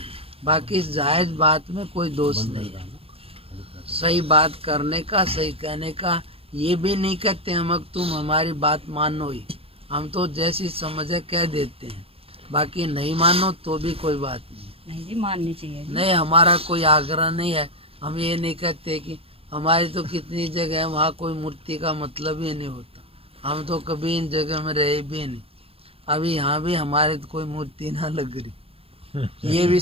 बाकी इस जायज बात में कोई दोष नहीं है। सही बात करने का, सही कहने का। ये भी नहीं कहते हम कि तुम हमारी बात मानो ही, हम तो जैसी समझे कह देते हैं। बाकी नहीं मानो तो भी कोई बात नहीं। नहीं जी माननी चाहिए जी। नहीं, हमारा कोई आग्रह नहीं है। हम ये नहीं कहते कि हमारी तो कितनी जगह है वहाँ कोई मूर्ति का मतलब ही नहीं होता। हम तो कभी इन जगह में रहे भी नहीं। अभी यहाँ भी हमारे तो कोई मूर्ति ना लग रही। ये भी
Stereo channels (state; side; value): late; left; 0.28 ms